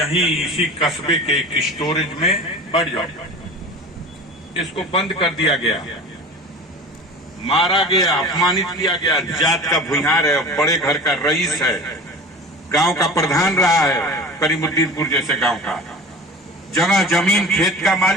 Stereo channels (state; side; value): normal; both; correlation 0.36